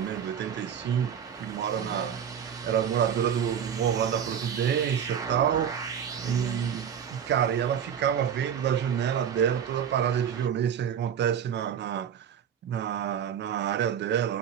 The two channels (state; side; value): quieter; left; 8.6 dB